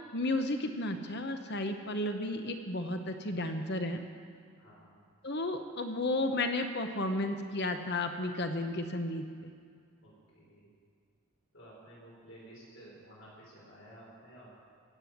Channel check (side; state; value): both; normal; correlation 0.35